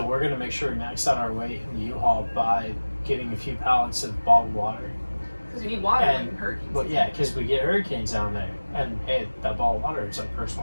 we're gonna make sure we max out our weight in the U-Haul by getting a few pallets of bottled water. Because you need water And- when hurricanes. But yeah, because we get hurricanes down there, and hey, that bottled water is like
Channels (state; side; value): inverted; both; correlation -1.00